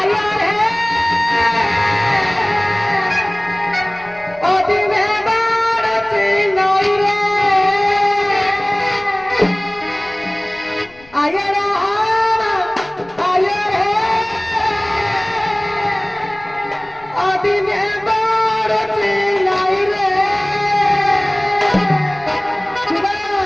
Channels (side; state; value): left; noise; rumble, 26 dB below the sound